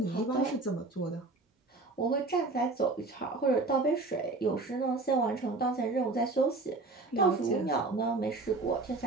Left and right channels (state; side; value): quieter; left; 3.4 dB